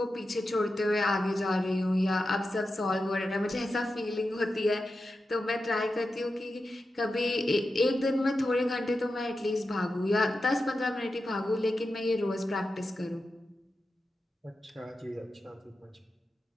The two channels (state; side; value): normal; both; correlation 0.91